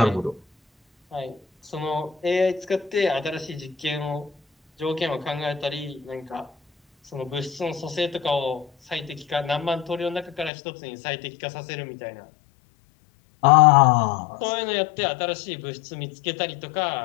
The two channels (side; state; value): right; drops out; at 10.5 s